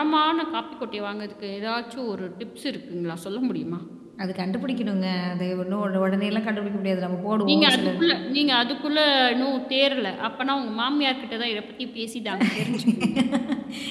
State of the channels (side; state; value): both; identical; correlation 1.00